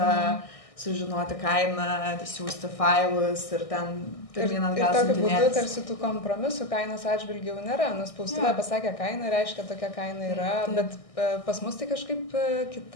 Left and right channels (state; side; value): late; right; 1.6 ms